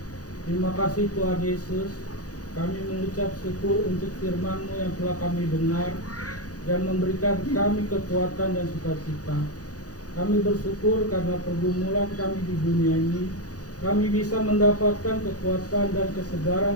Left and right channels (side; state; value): right; late; 0.67 ms